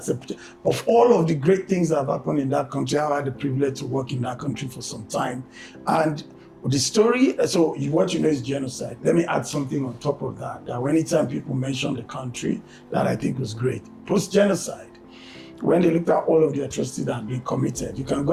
of all of the great things that have happened in that country. I've had the privilege to work in that country for some time. And the story, so what you know is genocide. Let me add something on top of that. That anytime people mention the country, that I think was great. Post-genocide, when they looked at all of the atrocities that had been committed, you can go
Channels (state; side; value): identical; both; correlation 1.00